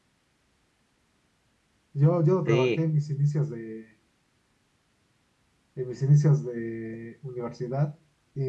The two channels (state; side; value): identical; both; correlation 1.00